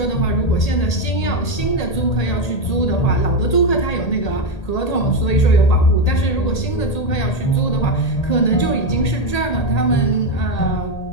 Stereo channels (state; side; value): late; right; 1.8 ms